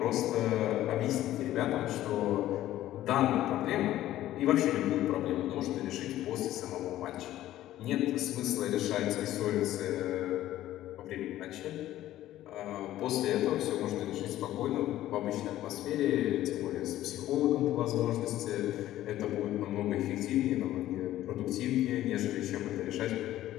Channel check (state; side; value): quieter; right; 13.9 dB